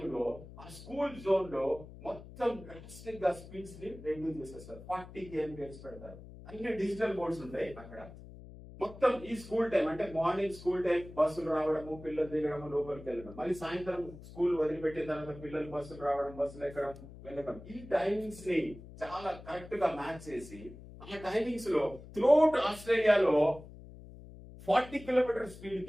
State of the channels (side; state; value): left; noise; hum, 16 dB below the sound